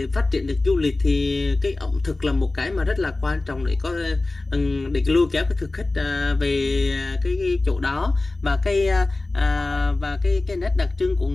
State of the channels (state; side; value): quieter; right; 3.1 dB